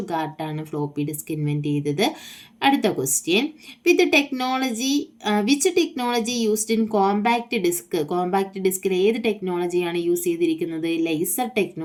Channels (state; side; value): identical; both; correlation 1.00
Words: ഫ്ലോപ്പി ഡിസ്ക് ഇൻവെൻറ്റ് ചെയ്തത്. അടുത്ത question, which technology used in compact disc? Compact ഡിസ്കിൽ ഏത് ടെക്നോളജിയാണ് യൂസ് ചെയ്തിരിക്കുന്നത്? ലേസർ